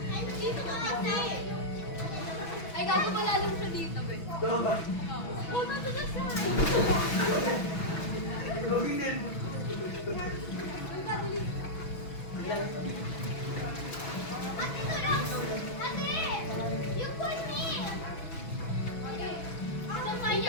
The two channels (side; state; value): right; late; 6.1 ms